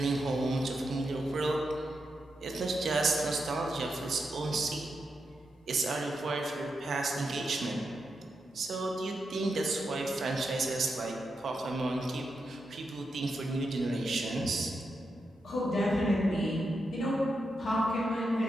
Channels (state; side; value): normal; both; correlation 0.86